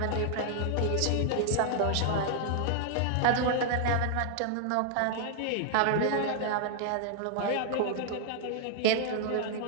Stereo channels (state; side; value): different; both; correlation 0.00